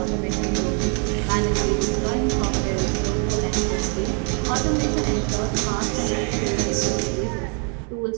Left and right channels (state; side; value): quieter; left; 39.3 dB